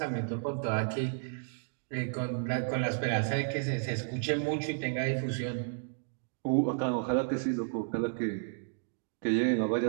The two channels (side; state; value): left; silent; digital silence